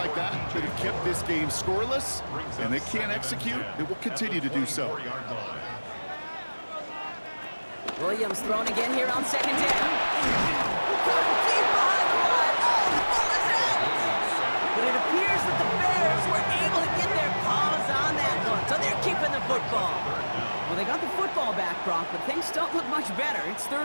that that have kept this game scoreless, and they can't execute. It will continue to do so. Williams thrown again here on second down. Deep behind the line. Oh, the ball is out! But it appears that the Bears were able to get their paws on that one, so they're keeping the football. Well, they got the football back, Brock, but things don't look much better. It's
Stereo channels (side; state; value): both; inverted; correlation -1.00